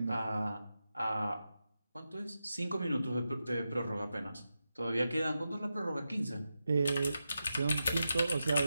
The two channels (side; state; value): both; inverted; correlation -0.89